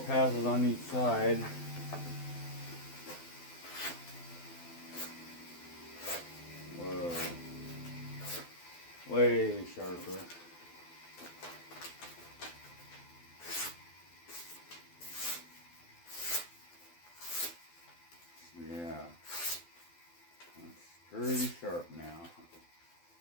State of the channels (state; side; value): late; right; 12 ms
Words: on each side. Whoa. Way sharper. Yeah. That's pretty sharp now.